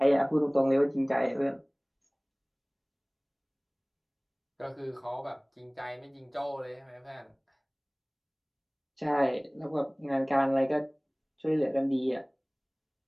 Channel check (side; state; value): both; identical; correlation 1.00